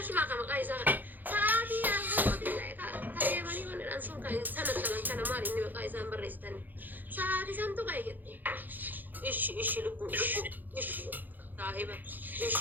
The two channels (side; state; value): left; late; 0.086 ms